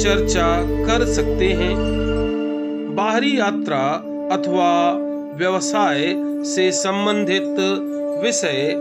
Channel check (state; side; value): identical; both; correlation 1.00